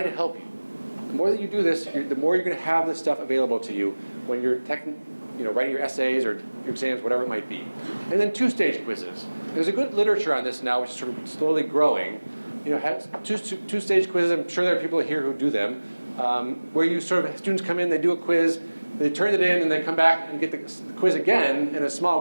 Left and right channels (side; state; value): both; inverted; correlation -1.00